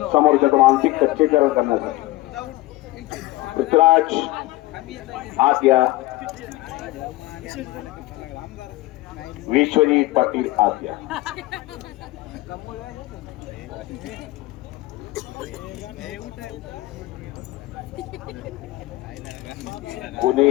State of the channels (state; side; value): quieter; right; 18.7 dB